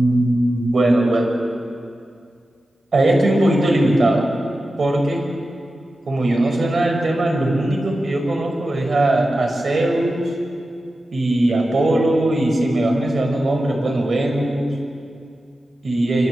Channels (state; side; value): normal; both; correlation 0.92